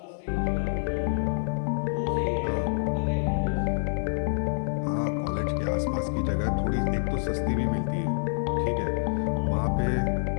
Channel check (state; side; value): silent; right; 60 dB below the other